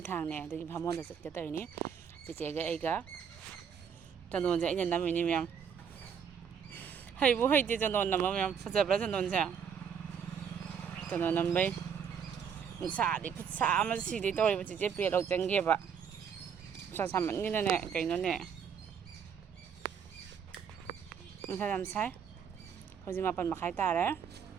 ꯊꯥꯡꯅꯦ ꯑꯗꯨꯒꯤ ꯚꯥꯃꯣꯟꯗ ꯆꯠꯀꯦ ꯇꯧꯔꯤꯅꯤ ꯆꯤꯆꯦꯒ ꯑꯩꯒ ꯆꯟꯗꯣꯟꯁꯦ ꯑꯩꯅ ꯅꯝꯃꯤꯅꯤ ꯃꯌꯥꯝ ꯍꯩꯕꯨ ꯍꯩꯇꯦ ꯆꯟꯗꯣꯟ ꯅꯝꯕ ꯃꯌꯥꯝ ꯐꯖꯕ꯭ꯔꯥ ꯆꯟꯗꯣꯟꯁꯦ ꯆꯟꯗꯣꯟ ꯅꯝꯕꯩ ꯅꯨꯡꯁꯥꯗꯤ ꯈꯨꯠꯁꯥ ꯑꯃ ꯁꯤꯗꯩ ꯇꯧꯔꯤꯕ ꯆꯤꯆꯦ ꯄꯦꯠ ꯂꯧ ꯆꯪꯒꯦꯕ ꯅꯨꯡꯁꯥ ꯁꯥꯃꯟꯒꯤꯅꯅꯦ ꯀꯩꯅꯣꯅꯦ ꯅꯨꯡꯁꯥ ꯌꯥꯝ ꯁꯥꯏ ꯍꯧꯖꯤꯛ 8:30 ꯇꯥꯔꯦ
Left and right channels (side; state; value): left; quieter; 7.3 dB